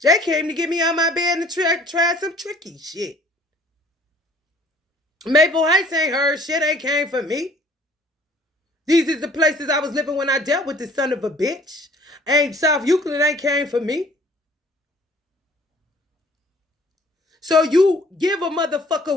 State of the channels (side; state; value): both; normal; correlation 0.54